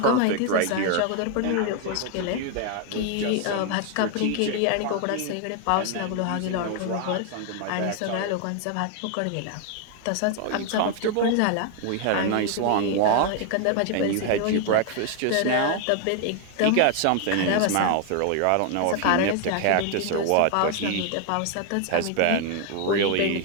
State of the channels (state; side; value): different; both; correlation 0.01